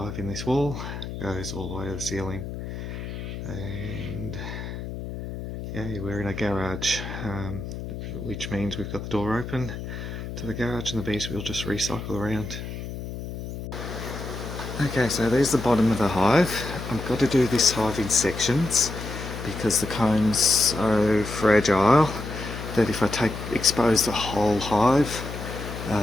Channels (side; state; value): left; noise; hum, 8 dB below the sound